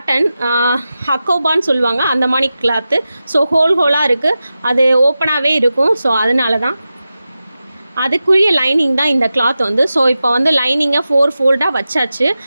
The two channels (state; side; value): inverted; both; correlation -0.93